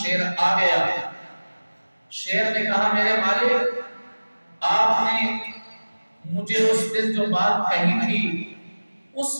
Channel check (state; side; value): inverted; both; correlation -1.00